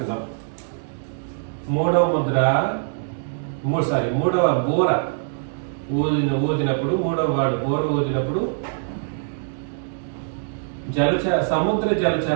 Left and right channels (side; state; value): left; silent; digital silence